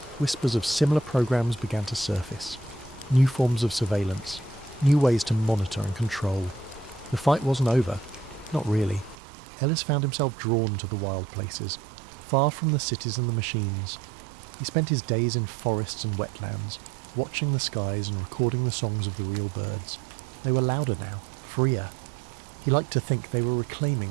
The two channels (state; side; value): drops out; left; at 9.2 s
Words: whispers of similar programs began to surface. New forms of surveillance, new ways to monitor and control. The fight wasn't over. Not really. Ellis found himself drawn to the wild places, far from the cities and the machines. He spent his days in forests and wetlands, watching the skies and recording the songs of the real birds. They were louder now, freer. He liked to think they were